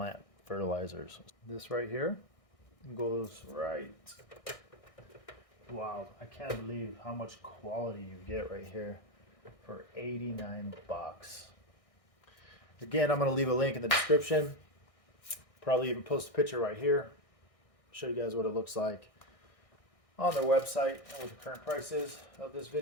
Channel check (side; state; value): right; late; 1.6 ms